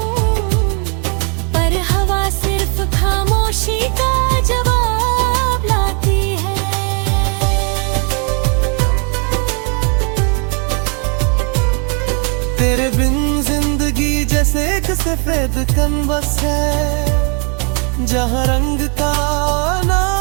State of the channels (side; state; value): left; quieter; 37.6 dB